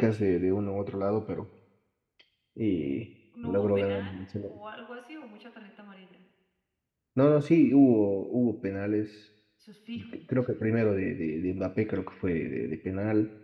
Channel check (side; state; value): both; identical; correlation 1.00